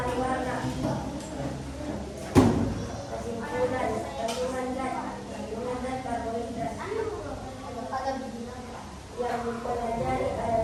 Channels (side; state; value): both; identical; correlation 1.00